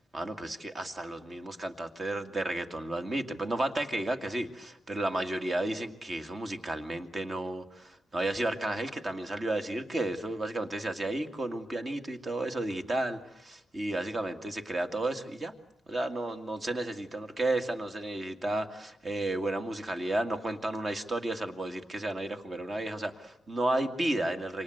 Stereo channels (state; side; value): normal; both; correlation 0.90